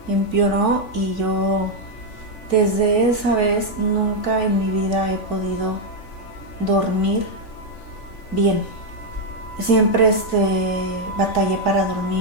y yo desde esa vez nunca en mi vida he podido dormir bien. Siempre batallé para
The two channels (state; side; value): late; right; 3.5 ms